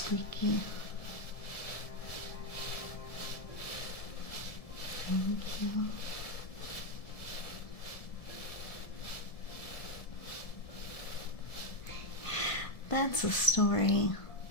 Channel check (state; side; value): late; right; 1.7 ms